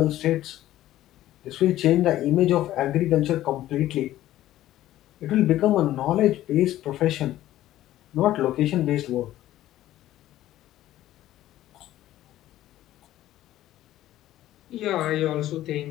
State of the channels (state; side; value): quieter; right; 14.1 dB